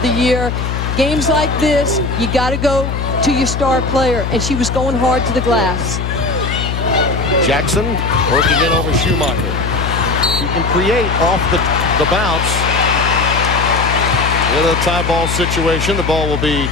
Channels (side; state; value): left; noise; hum, 3 dB below the sound